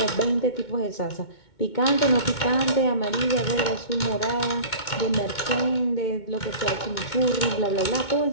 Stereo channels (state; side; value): late; right; 2.2 ms